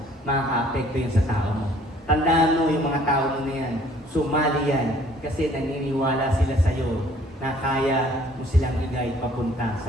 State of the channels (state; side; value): normal; both; correlation 0.57